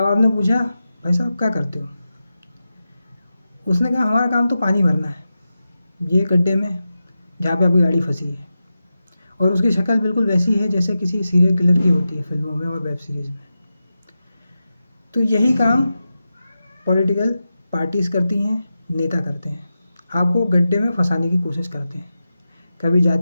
आपने पूछा, भाई साहब क्या करते हो? उसने कहा, हमारा काम तो पानी भरना है ये गड्ढे में जहाँ पे आपकी गाड़ी फंसी है। और उसकी शक्ल बिल्कुल वैसी है जैसे किसी सीरियल किलर की होती है फिल्मों में और वेब सीरीज़ में। तो यही काम पॉलिटिकल पार्टीज़ करती हैं, नेता करते हैं। आपको गड्ढे में फंसाने की कोशिश करते हैं, कभी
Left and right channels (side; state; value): both; inverted; correlation -0.91